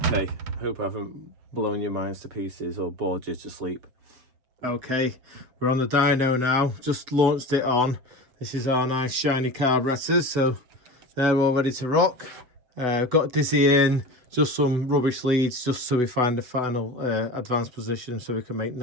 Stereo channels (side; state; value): left; late; 8.0 ms